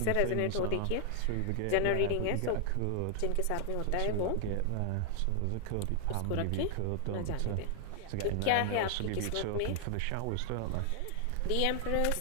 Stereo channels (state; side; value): different; both; correlation 0.00